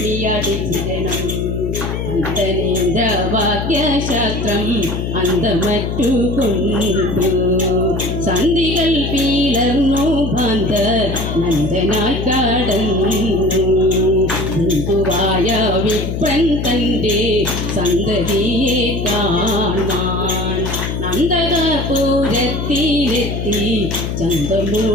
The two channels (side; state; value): left; noise; hum, 3 dB below the sound